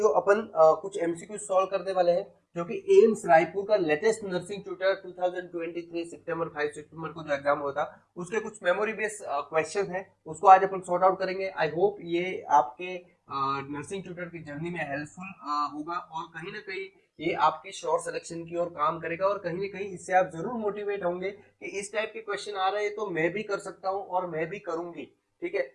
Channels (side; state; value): both; identical; correlation 1.00